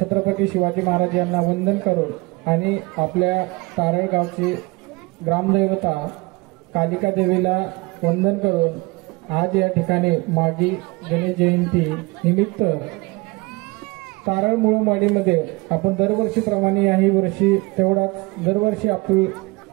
शिवाजी महाराज यांना वंदन करून आणि आपल्या तारळगावची ग्रामदैवता कालिका देवीला वंदन करून आज या ठिकाणी मागी गणेश जयंती निमित्त तारळ मुळमाडीमध्ये आपण दरवर्षीप्रमाणे याही वर्षी तेवढाच दरवर्षी आपली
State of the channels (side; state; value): left; quieter; 24.6 dB